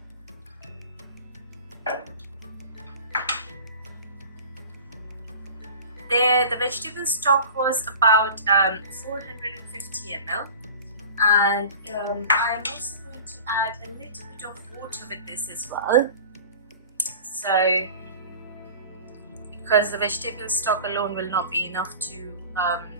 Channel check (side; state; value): both; inverted; correlation -0.39